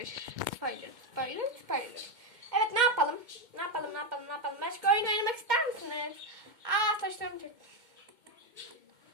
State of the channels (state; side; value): late; left; 2.2 ms